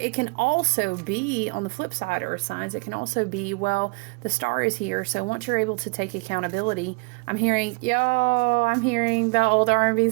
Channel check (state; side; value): quieter; left; 31.3 dB